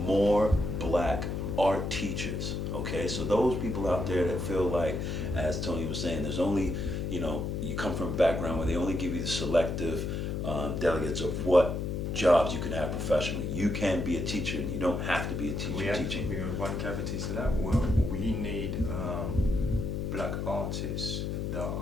black art teachers, okay? So those people out there that feel like, as Tony was saying, there's only, you come from a background where they only give you the selective delegates of what jobs you can have professionally. You can be a teacher and you don't have to be a teacher teaching. We have one cavity to that. Well, we need black artists that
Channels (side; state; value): left; noise; hum, 2 dB below the sound